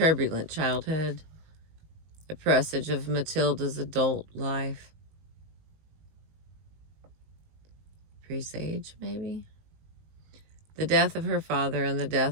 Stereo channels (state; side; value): late; left; 19 ms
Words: childhood, a presage of Matilda's adult life. Presage, maybe? The death of her father and the